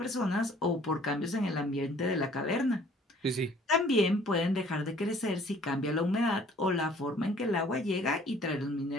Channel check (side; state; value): both; normal; correlation 0.56